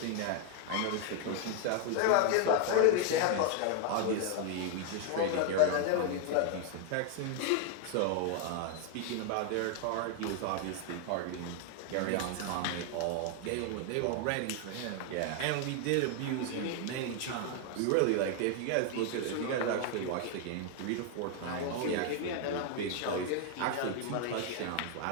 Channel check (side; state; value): both; different; correlation 0.00